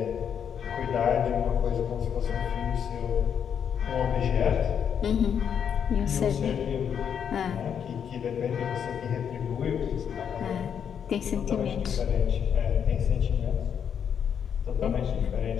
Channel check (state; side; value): quieter; right; 8.0 dB